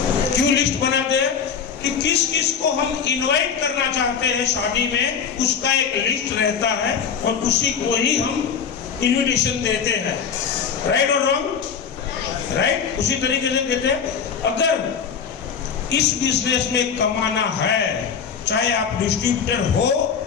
क्यों लिस्ट बनाते हैं? कि किस किस को हम इनवाइट करना चाहते हैं शादी में, उसका एक लिस्ट रहता है और उसी को ही हम इनविटेशन देते हैं। राइट और रॉन्ग? राइट। उसी तरीके से कहते हैं अगर इस बिजनेस में कमाना है, चाहे आप डिस्ट्रीब्यूटर हो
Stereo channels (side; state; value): right; quieter; 6.9 dB